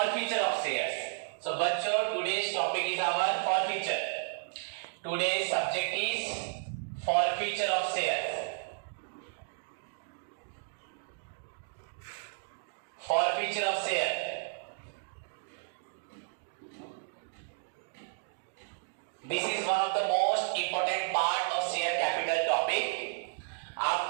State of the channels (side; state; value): left; silent; digital silence